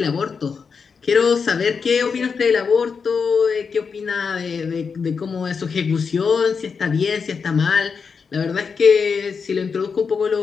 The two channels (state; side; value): quieter; right; 5.6 dB